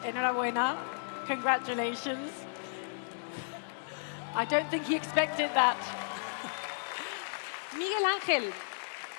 Enhorabuena. Congratulations. I don't think he expected that. Miguel Ángel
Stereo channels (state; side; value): silent; right; digital silence